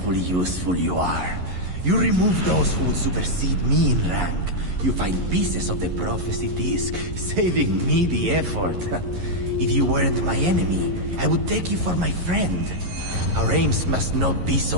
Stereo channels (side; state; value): left; late; 11 ms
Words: useful you are. You remove those who would supersede me in rank. You find pieces of the prophecy disc, saving me the effort. If you weren't my enemy, I would take you for my friend. Our aims must not be